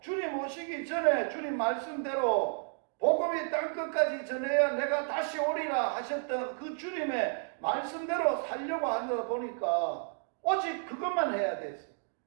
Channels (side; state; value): left; silent; 56 dB below the other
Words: 주님 오시기 전에 주님 말씀대로 복음이 땅끝까지 전해야 내가 다시 오리라 하셨던 그 주님의 말씀대로 살려고 하다 보니까 오직 그것만 해야 됐어.